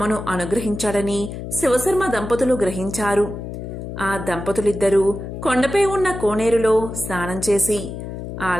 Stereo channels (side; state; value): left; noise; hum, 8 dB below the sound